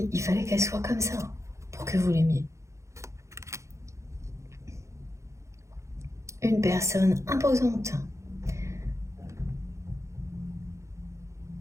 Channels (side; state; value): left; late; 0.14 ms